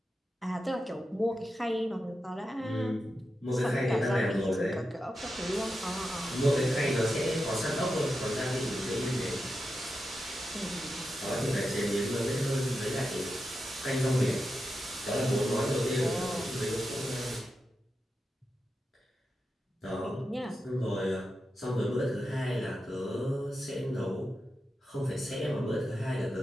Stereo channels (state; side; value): normal; both; correlation 0.89